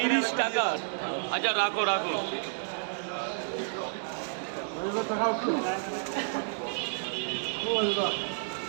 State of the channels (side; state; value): left; silent; 57 dB below the other